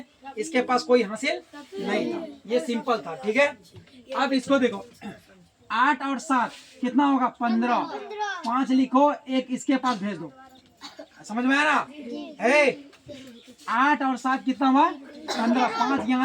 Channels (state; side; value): identical; both; correlation 1.00